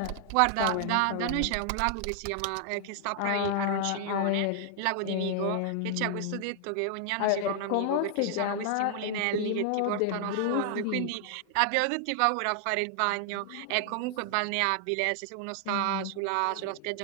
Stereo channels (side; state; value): both; different; correlation 0.00